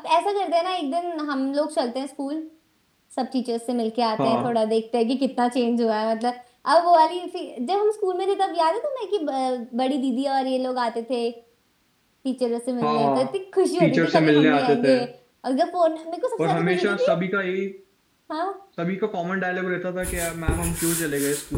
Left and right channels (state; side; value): identical; both; correlation 1.00